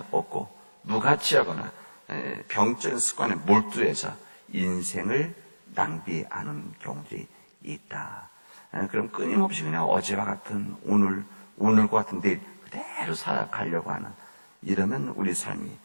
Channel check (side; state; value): both; inverted; correlation -1.00